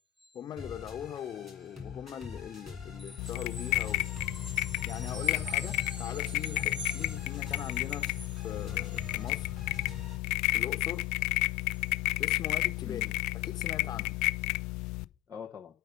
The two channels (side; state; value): right; quieter; 14.2 dB